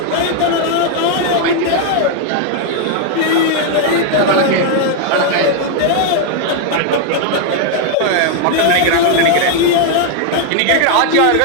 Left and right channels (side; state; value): both; different; correlation 0.00